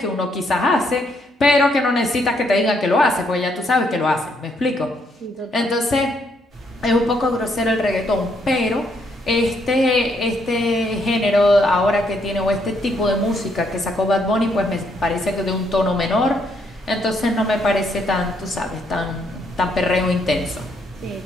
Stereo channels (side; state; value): both; normal; correlation 0.73